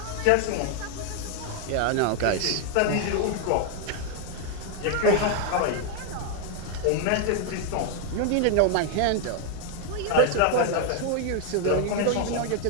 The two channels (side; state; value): both; different; correlation 0.01